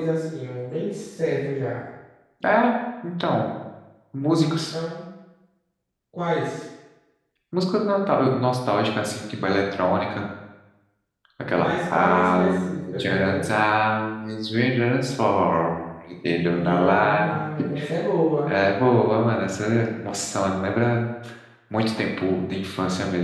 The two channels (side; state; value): both; identical; correlation 1.00